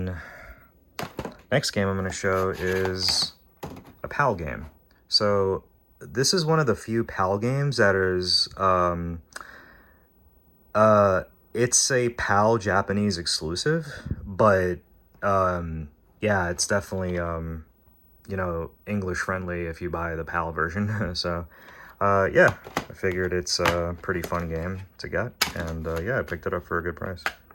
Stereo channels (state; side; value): identical; both; correlation 1.00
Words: next game I'm going to show is a PAL game. So this is one of the few PAL games that is it's a PAL Japanese exclusive, but yeah, it's definitely you know, English friendly if you buy the PAL version. So yeah, I figured it's a pretty fun game to get, and yeah, I picked it up for a good price.